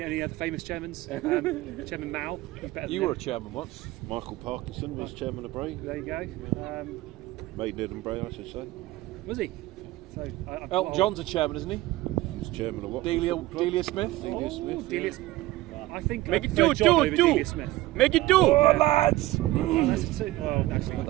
other famous chairmans. Chairman Mao. He's better than You were a him. chairman once. Michael Parkinson was chairman of Bray. There you go. Maidenhead and Bray, I should say. Was he? So Elton John's a chairman, isn't he? He's chairman of what? Delia Smith. Delia Smith. Delia, I think Make I it prefer two, John two, over two. Delia Smith. Make it 2, lads. That's a two. Well, actually,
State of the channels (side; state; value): left; quieter; 17.8 dB